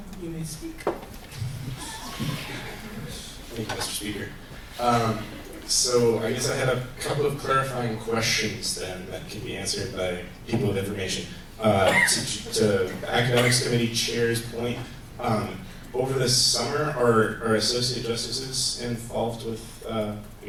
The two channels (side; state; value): both; identical; correlation 1.00